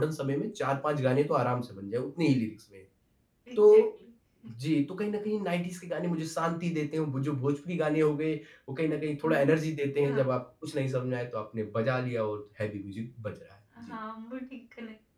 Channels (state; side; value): identical; both; correlation 1.00